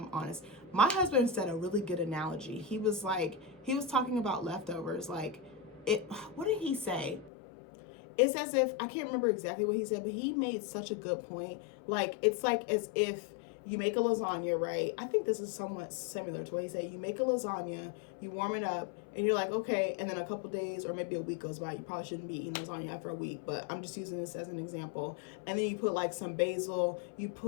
honest. My husband said a really good analogy. He was talking about leftovers, like what did he say? It's as if, I can't remember exactly what he said, but he made such a good point. Like, it's like as if you make a lasagna, right? I think this is somewhat similar to what he said. You make a lasagna, you warm it up, and you're like, okay, and then a couple days or maybe a week goes by. You probably shouldn't be eating lasagna after a week, but I'm just using this as an example. And then you put like some basil, you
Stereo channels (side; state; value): right; drops out; at 7.3 s